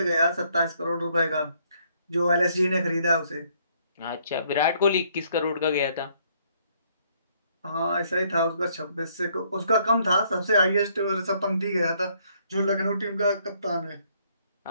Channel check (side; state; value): both; inverted; correlation -0.68